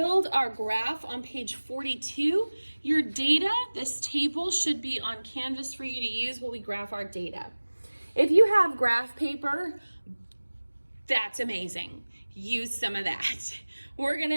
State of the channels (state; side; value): inverted; both; correlation -1.00